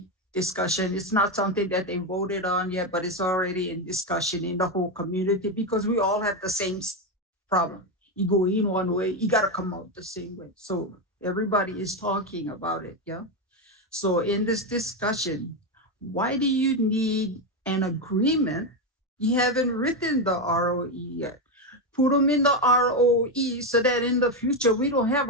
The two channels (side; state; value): both; normal; correlation 0.09